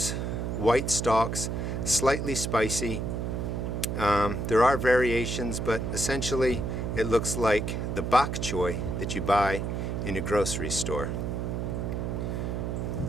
white stalks, slightly spicy. There are variations, but essentially it looks like the bok choy that you buy in a grocery store.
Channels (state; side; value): noise; right; hum, 2 dB below the sound